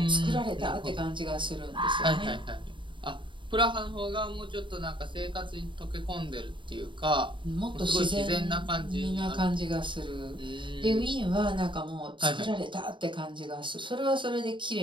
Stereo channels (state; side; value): late; left; 0.24 ms